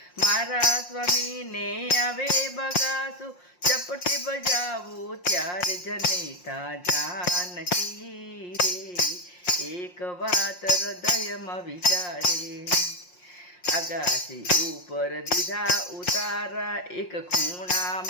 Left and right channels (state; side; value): late; right; 5.6 ms